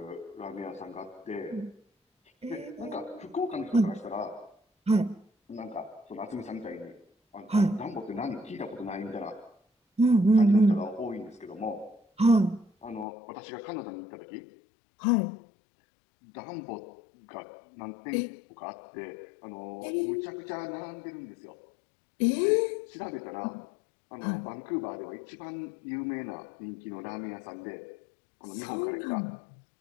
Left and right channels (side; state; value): right; drops out; at 13.1 s